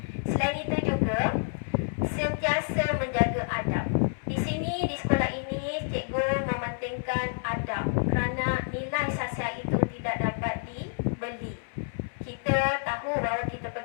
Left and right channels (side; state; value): right; silent; 59 dB below the other